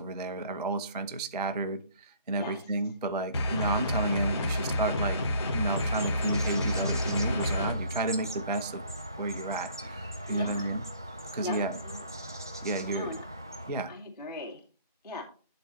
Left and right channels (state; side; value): inverted; both; correlation -0.56